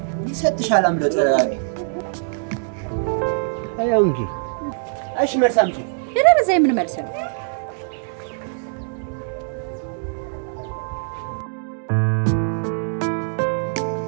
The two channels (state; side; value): silent; left; digital silence